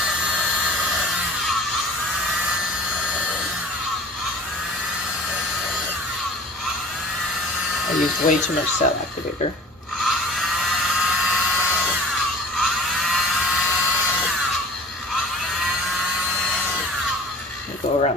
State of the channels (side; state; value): both; normal; correlation 0.44